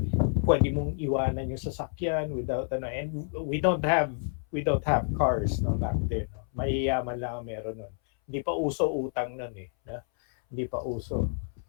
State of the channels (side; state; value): right; silent; 59 dB below the other